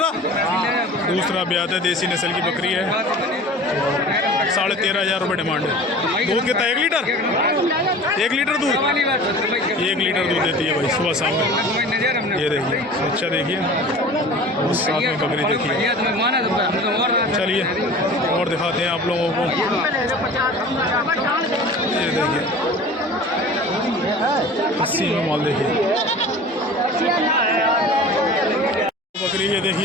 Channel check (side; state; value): both; normal; correlation 0.40